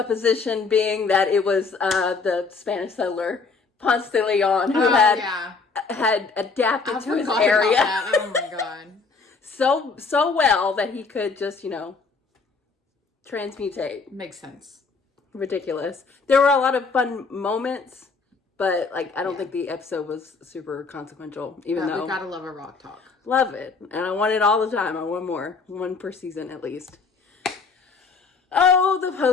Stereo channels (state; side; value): quieter; right; 4.6 dB